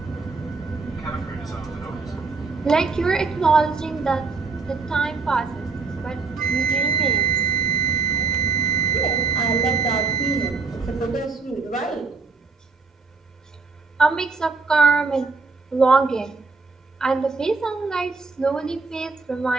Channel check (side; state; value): left; quieter; 4.4 dB